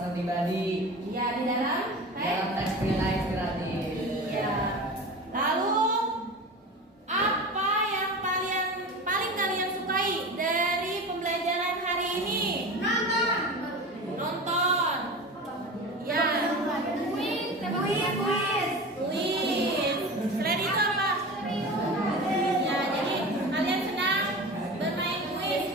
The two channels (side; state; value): both; normal; correlation 0.31